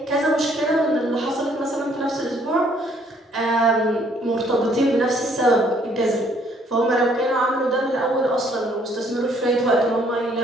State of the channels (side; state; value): both; normal; correlation 0.64